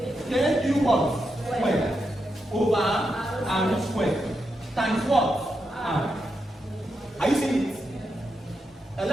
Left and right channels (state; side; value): normal; both; correlation 0.85